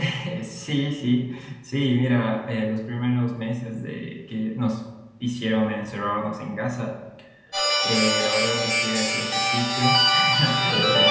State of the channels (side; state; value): both; identical; correlation 1.00